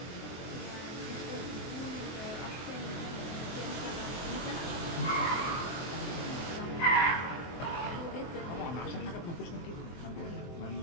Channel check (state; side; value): late; right; 23 ms